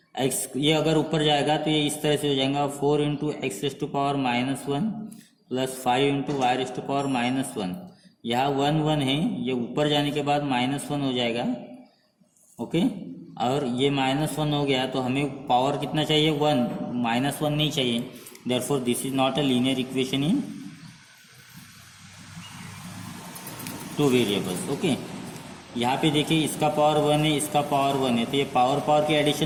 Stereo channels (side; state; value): both; identical; correlation 1.00